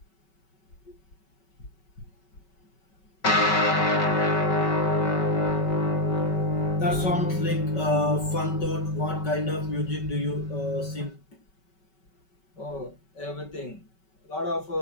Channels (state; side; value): late; right; 5.3 ms